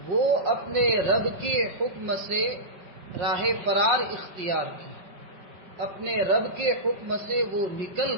وہ اپنے رب کے حکم سے راہ فرار اختیار کی، اپنے رب کے حکم سے وہ نکل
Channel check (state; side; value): late; left; 5.3 ms